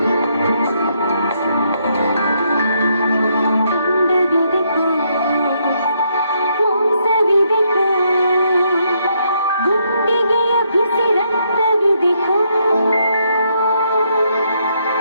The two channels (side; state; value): both; inverted; correlation -0.75